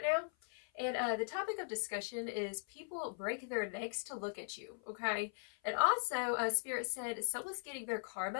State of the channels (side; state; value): right; silent; 51 dB below the other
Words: now. And the topic of discussion is people break their necks to look at you, okay? And also, Spirit said someone's getting their